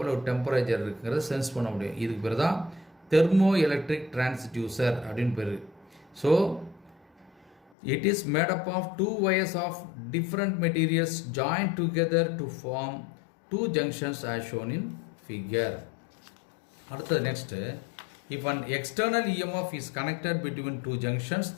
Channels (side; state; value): right; drops out; at 7.7 s